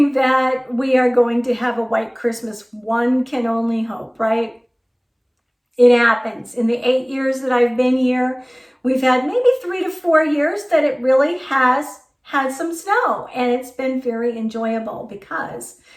that we are going to have a white Christmas. One can only hope, right? It happens. In the 8 years that I've been here, we've had maybe 3 to 4 years that it really has had some snow, and it's been very enjoyable because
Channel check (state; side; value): identical; both; correlation 1.00